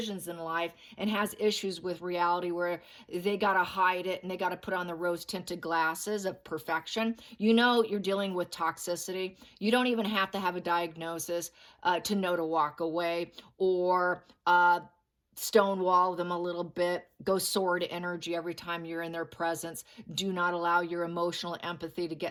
in life and has issues with reality where they got to hide it and they got to put on the rose tinted glasses of perfection, you know you're dealing with toxicity. You don't even have to have a diagnosis to know to walk away or stonewall them a little bit, go sword energy every time you're in their presence. Do not allow your emotional empathy to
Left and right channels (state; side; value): identical; both; correlation 1.00